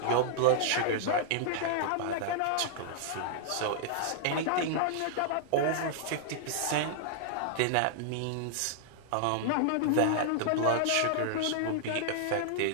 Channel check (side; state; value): both; different; correlation -0.01